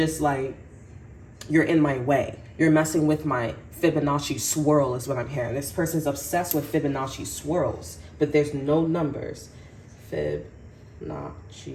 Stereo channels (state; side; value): identical; both; correlation 1.00